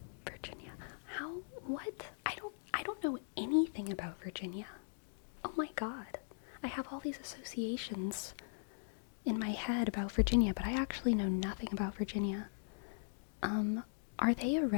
Virginia. What? I don't know anything about Virginia. Oh my god. I have all these associations in my head about Virginia, but I actually know nothing about Virginia. Are they a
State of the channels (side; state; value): right; silent; digital silence